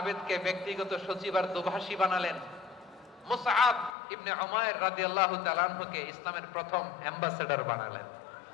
ব্যক্তিগত সচিব আর দোভাষী বানালেন, মুসআব ইবনে উমাইর রাদিয়াল্লাহু তাআলা আনহুকে ইসলামের প্রথম অ্যাম্বাসেডর বানালেন।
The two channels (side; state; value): right; drops out; at 4.0 s